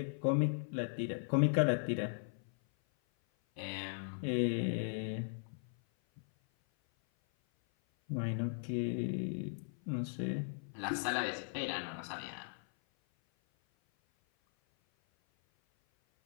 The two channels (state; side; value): silent; right; 53 dB below the other